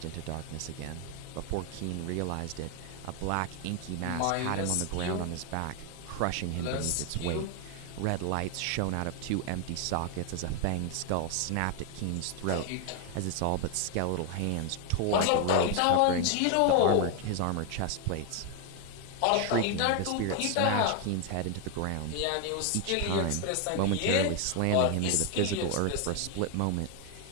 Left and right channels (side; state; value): both; different; correlation 0.01